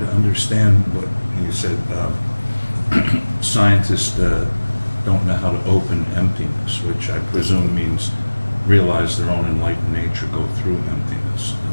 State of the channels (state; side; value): inverted; both; correlation -1.00